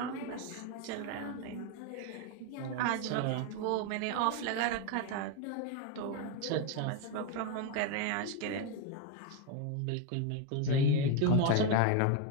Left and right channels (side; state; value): both; different; correlation 0.02